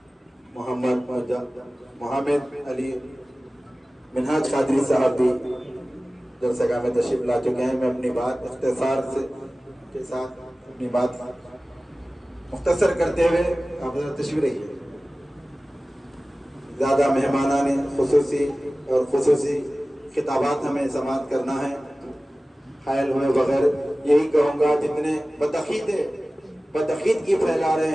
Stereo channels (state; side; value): normal; both; correlation 0.97